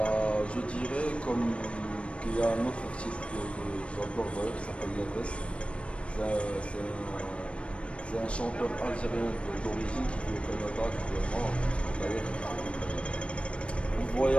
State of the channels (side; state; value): right; late; 0.060 ms